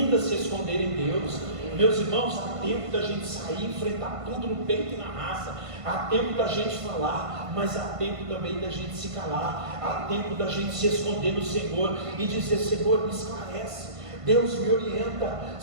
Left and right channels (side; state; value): left; late; 1.5 ms